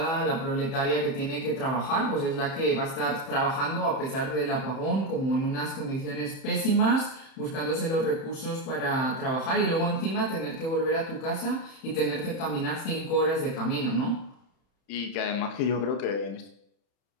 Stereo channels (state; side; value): late; right; 31 ms